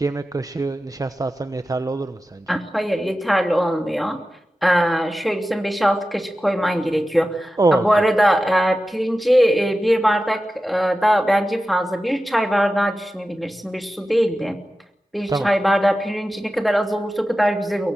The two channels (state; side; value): normal; both; correlation 0.93